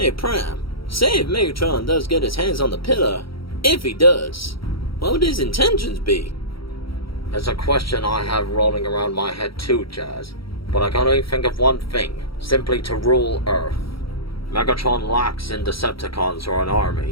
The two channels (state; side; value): late; right; 0.75 ms